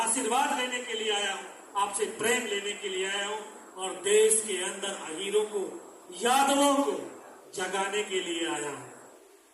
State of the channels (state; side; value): identical; both; correlation 1.00